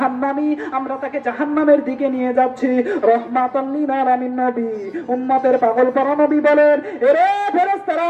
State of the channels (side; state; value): both; identical; correlation 1.00